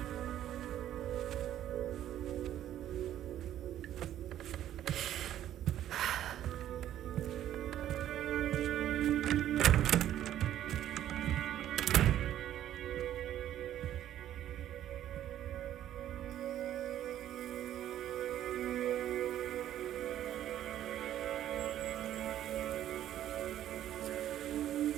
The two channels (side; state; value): left; quieter; 11.8 dB